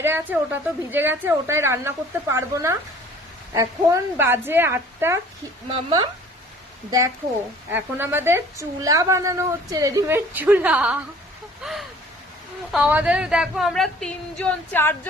আছে ওটা তো ভিজে গেছে, ওটাই রান্না করতে পারবো না। এখন বাজে 8টা। মাম্মা দেখো, এখন আমাদের চুলা বানানো হচ্ছে, রেডিমেড চুলা। আমাদের দেখো, আমরা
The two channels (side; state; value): both; normal; correlation 0.51